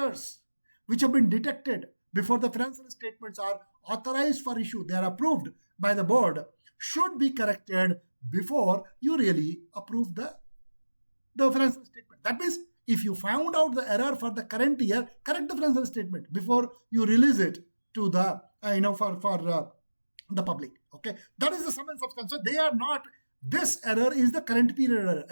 which have been detected before the financial statements are authorized for issue, they are approved by the board, should be corrected before you really approve the financial statement. That means if you found out the error for the current year, correct the financial statement before you release it to the for the public. Okay, that is the sum and substance. So they are not. This error is the current period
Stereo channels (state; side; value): inverted; both; correlation -1.00